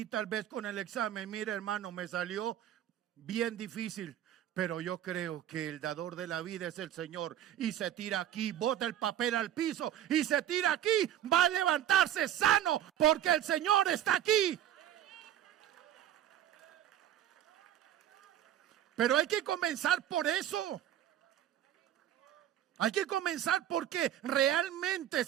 tal vez con el examen. Mire, hermano, me salió bien difícil, pero yo creo que el dador de la vida es el Señor. Y se tira aquí, bota el papel al piso y se tira aquí. Va a levantarse sano porque el Señor está aquí. Pero hay que comenzar por eso. Hay que comenzar porque realmente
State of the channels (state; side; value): quieter; left; 11.3 dB